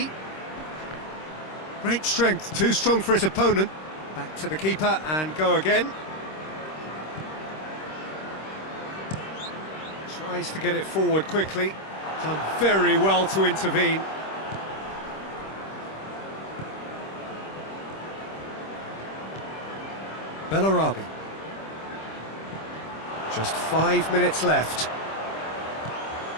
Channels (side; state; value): right; late; 26 ms